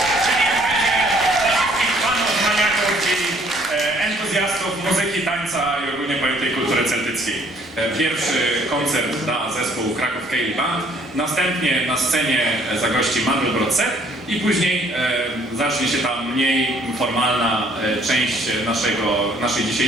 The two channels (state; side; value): normal; both; correlation 0.61